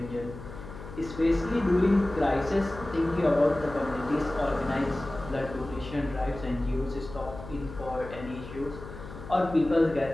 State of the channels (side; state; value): left; noise; hum, 13 dB below the sound